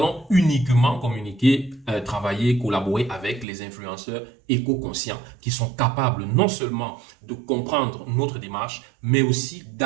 uniquement communiquer, travailler, collaborer avec les influenceurs éco-conscients qui sont capables non seulement de comprendre notre démarche, mais aussi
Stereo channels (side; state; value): left; drops out; at 3.5 s